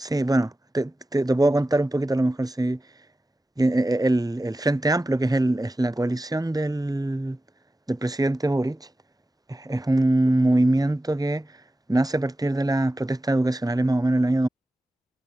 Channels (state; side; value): normal; both; correlation 0.93